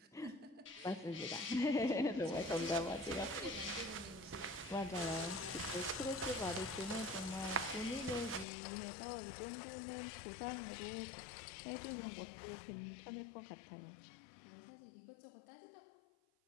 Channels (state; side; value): drops out; right; at 8.5 s